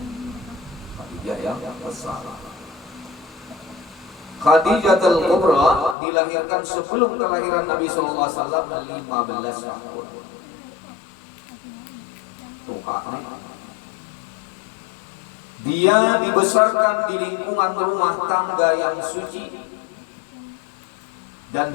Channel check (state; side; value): drops out; right; at 6.0 s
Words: Khadijah yang besar. Khadijah Al-Kubra dilahirkan sebelum kelahiran Nabi SAW 15 tahun. Dia dibesarkan di lingkungan rumah tangga yang suci dan